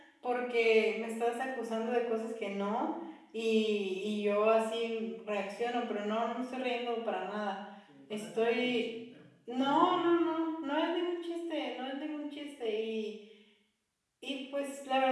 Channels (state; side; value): identical; both; correlation 1.00